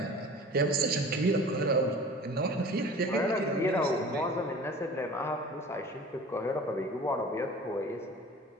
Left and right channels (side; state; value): both; normal; correlation 0.42